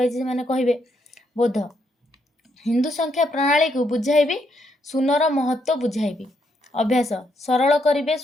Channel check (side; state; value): both; normal; correlation 0.76